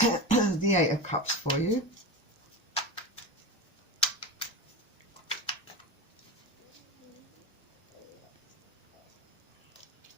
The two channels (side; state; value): both; normal; correlation 0.24